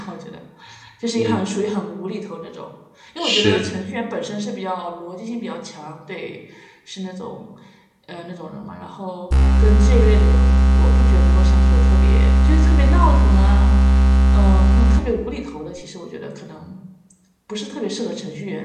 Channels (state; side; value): identical; both; correlation 1.00